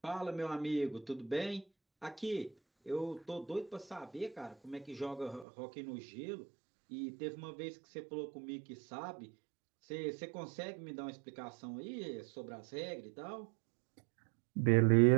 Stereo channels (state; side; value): drops out; left; at 5.5 s